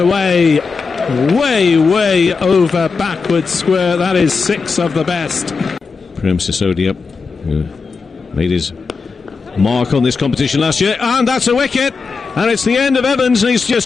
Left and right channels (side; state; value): right; quieter; 4.8 dB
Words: Way over backward square. That is 6 of the best. Prem Sisodia, who made his mark on this competition last year, and that's a wicket, and it's the end of Evans, and he's